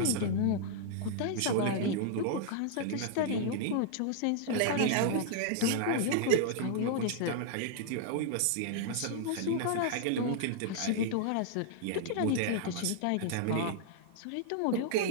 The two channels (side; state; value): both; different; correlation -0.01